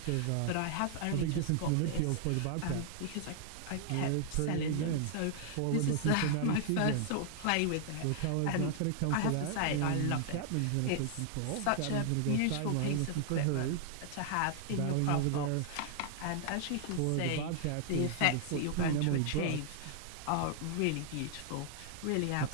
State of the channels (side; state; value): both; different; correlation 0.00